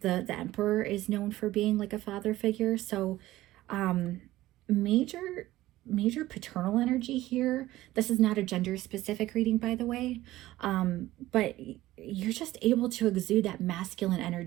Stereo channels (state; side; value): quieter; left; 16.2 dB